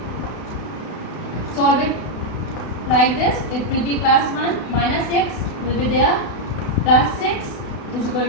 solve it like this. It will be plus 1 minus 6 will be there, plus 6 is equal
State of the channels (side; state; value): right; late; 32 ms